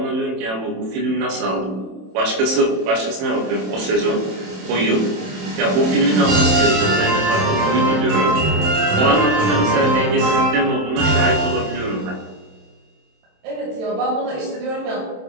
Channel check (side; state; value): left; late; 27 ms